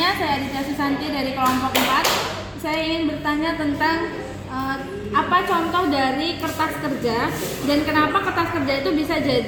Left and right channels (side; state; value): both; identical; correlation 1.00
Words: saya Aditya Susanti dari kelompok 4. Saya ingin bertanya tentang apa contoh dari kertas kerja dan kenapa kertas kerja itu bisa